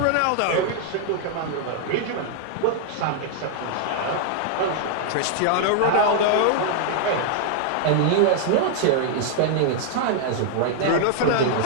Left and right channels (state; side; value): different; both; correlation 0.00